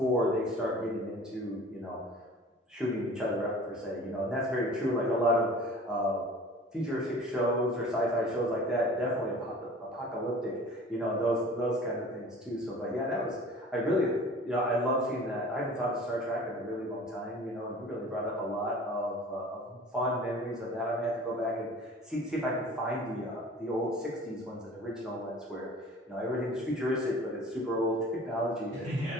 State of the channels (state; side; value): normal; both; correlation 0.44